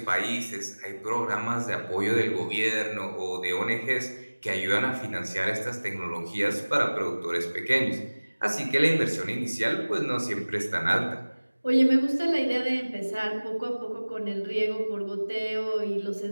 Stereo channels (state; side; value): inverted; both; correlation -1.00